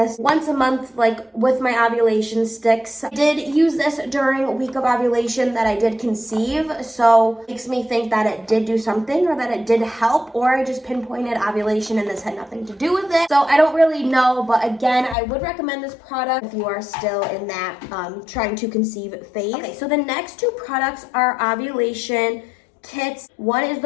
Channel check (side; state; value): right; drops out; at 15.2 s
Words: once a month, like with my ovulation sticks. I did use this during a week of ovulation that I did conceive, so it makes me think that it did do something, or that it did help, or I just pinpointed ovulation and this had nothing to do with it. So I don't really know, but again, I would recommend this product if you are still in that trying to conceive phase. Okay, so the next two products are ovulation kits. One is